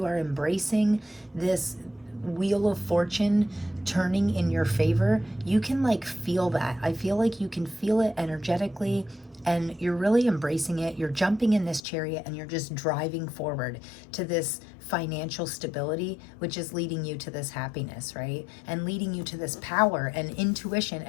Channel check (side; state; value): right; drops out; at 11.8 s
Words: are embracing this Wheel of Fortune turning in your favor. You can like feel that. I feel like you can feel it energetically, and you're really embracing it. You're jumping in this Chariot and you're just driving forward to this financial stability, which is leading you to this happiness, right? And leading you to this power and intuition.